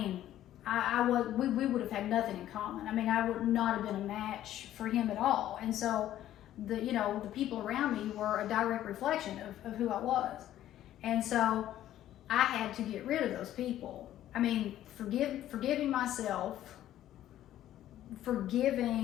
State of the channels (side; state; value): right; quieter; 12.6 dB